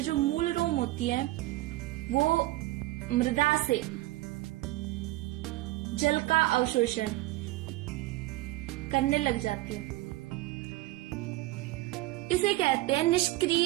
जो मूल रोम होती है वो मृदा से जल का अवशोषण करने लग जाती है। इसे कहते हैं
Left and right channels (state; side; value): quieter; left; 18.5 dB